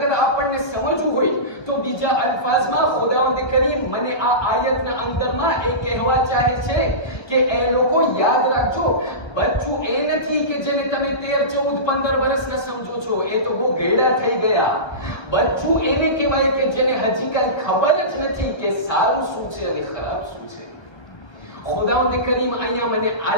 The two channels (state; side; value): late; right; 1.2 ms